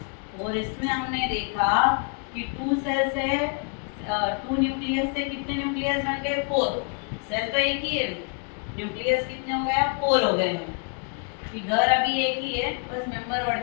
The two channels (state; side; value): quieter; right; 39.0 dB